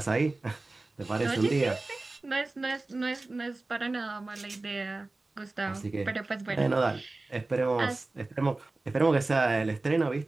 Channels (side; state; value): left; quieter; 3.2 dB